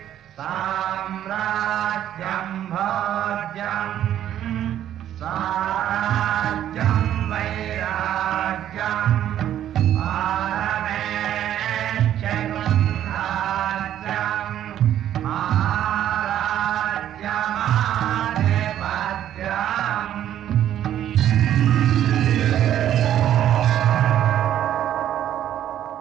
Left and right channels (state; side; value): quieter; left; 11.2 dB